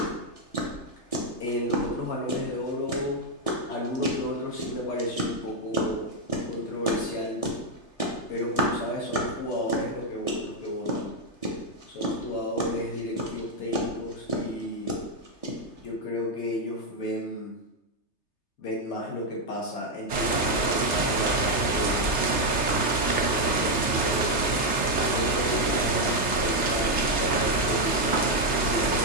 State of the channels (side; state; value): right; late; 3.3 ms